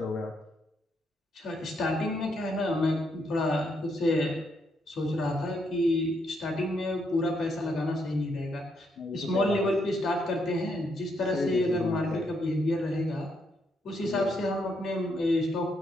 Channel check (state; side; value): normal; both; correlation 0.76